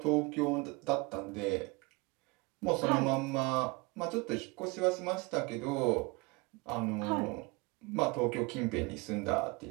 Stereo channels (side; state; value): left; quieter; 26.6 dB